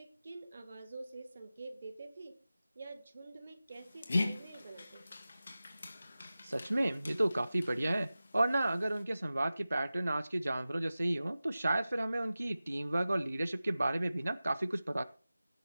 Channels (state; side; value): inverted; both; correlation -0.96